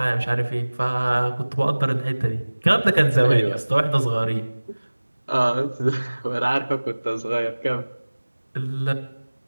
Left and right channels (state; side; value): inverted; both; correlation -1.00